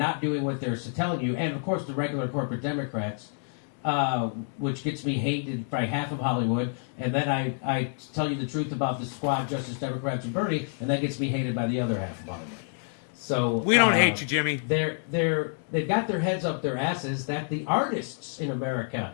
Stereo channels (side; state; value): right; silent; 59 dB below the other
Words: doing what they're telling you. And, of course, the regular corporate Democrats, which gets me hated by half of Hollywood. And then I tell you the truth about the squad, Justice Democrats and Bernie, and that gets me hated by the other half of Hollywood. So We don't hate you, Jimmy. They've got their heads up their asses that the artists in America